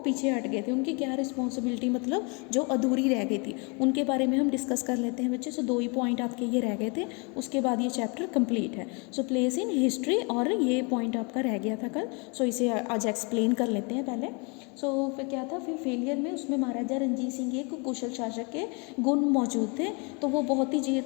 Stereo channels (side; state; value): right; quieter; 32.4 dB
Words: पीछे हट गए थे। उनकी क्या रिस्पॉन्सिबिलिटी मतलब जो अधूरी रह गई थी उनके बारे में हम डिस्कस कर लेते हैं बच्चे। सो 2 ही पॉइंट आपके ये रह गए थे, उसके बाद ये चैप्टर कंप्लीट है। सो प्लेस इन हिस्ट्री, और ये पॉइंट आपका रह गया था कल, सो इसे आज एक्सप्लेन कर लेते हैं पहले। सो फिर क्या था, फिर फेलियर में उसमें महाराजा रंजीत सिंह एक कुशल शासक के गुण मौजूद थे। तो वो बहुत ही देर